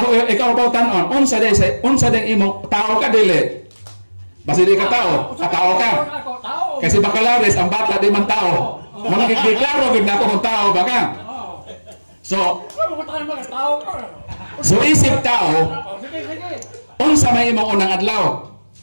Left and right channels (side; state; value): both; inverted; correlation -1.00